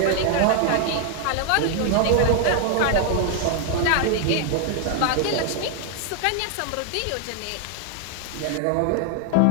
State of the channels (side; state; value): both; different; correlation 0.00